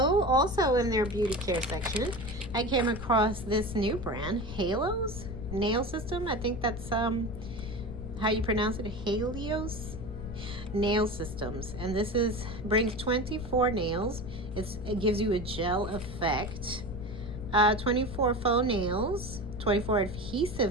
also in their beauty care section, I came across this new brand, Halo's Nail System. I think that's how you pronounce it, Helios Nail Systems. And this brings 24 nails. It gives you a gel effect. 24 faux nails, 24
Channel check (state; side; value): noise; left; rumble, 9 dB below the sound